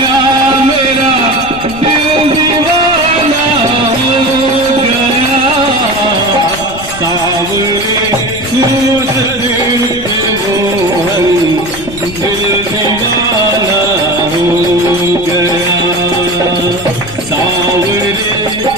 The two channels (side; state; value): left; noise; rumble, 15 dB below the sound